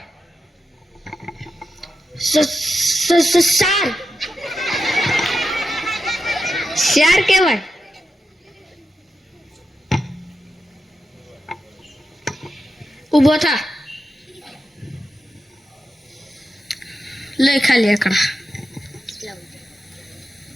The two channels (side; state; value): both; normal; correlation 0.89